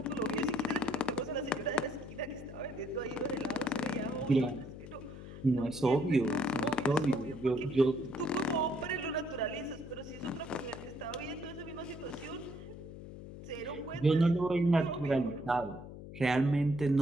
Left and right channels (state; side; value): noise; left; hum, 13 dB below the sound